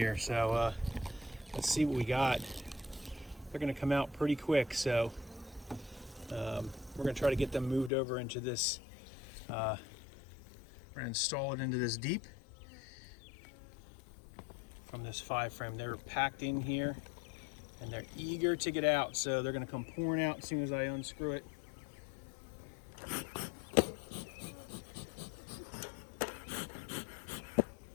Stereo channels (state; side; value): drops out; right; at 7.9 s